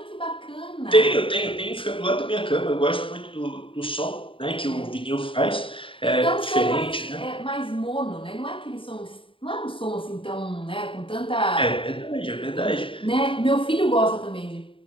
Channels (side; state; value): right; late; 0.25 ms